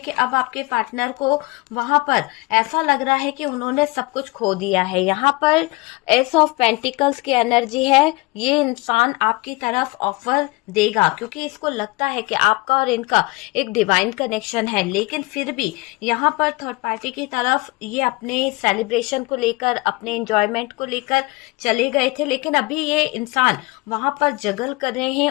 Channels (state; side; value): quieter; right; 23.4 dB